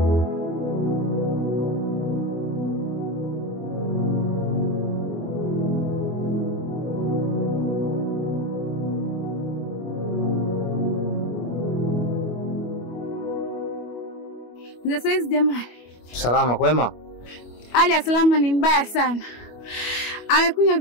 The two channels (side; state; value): right; late; 25 ms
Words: Za saizi jamani. Salama kwema? Hali ya Salama ni mbaya sana. Amekunywa